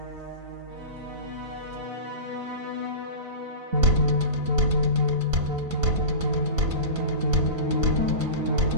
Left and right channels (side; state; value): left; late; 4.0 ms